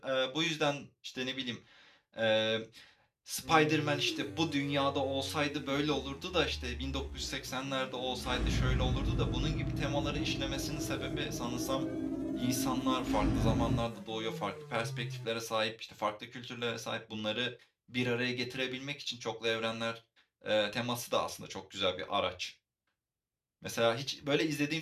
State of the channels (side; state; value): both; identical; correlation 1.00